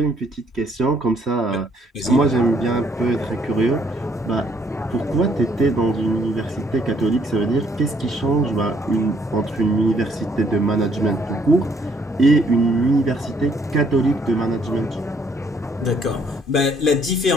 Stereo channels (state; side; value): normal; both; correlation 0.66